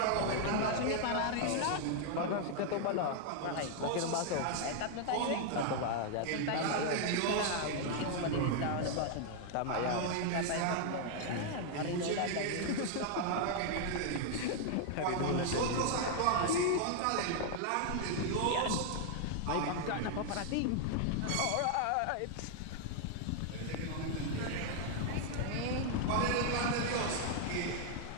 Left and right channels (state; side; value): different; both; correlation 0.00